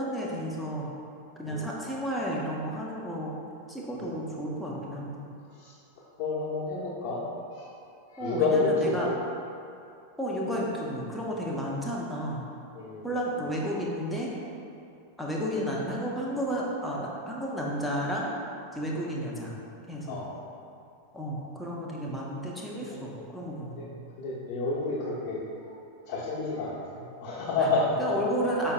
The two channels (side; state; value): both; normal; correlation 0.09